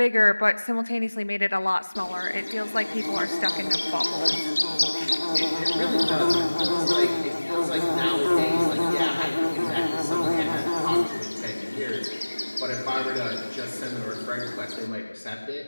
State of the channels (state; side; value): inverted; both; correlation -1.00